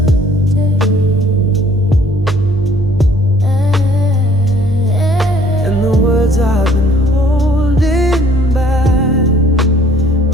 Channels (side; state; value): both; normal; correlation 0.58